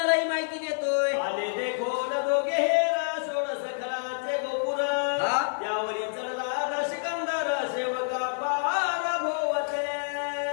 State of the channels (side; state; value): right; silent; 59 dB below the other